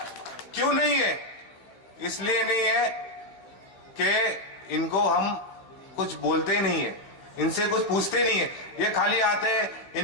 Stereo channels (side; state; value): right; late; 15 ms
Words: क्यों नहीं है? इसलिए नहीं है कि इनको हम कुछ बोलते ही नहीं है, इनसे कुछ पूछते नहीं है। ये खाली आते हैं,